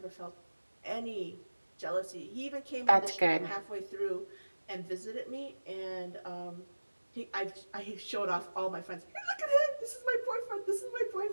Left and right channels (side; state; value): both; inverted; correlation -1.00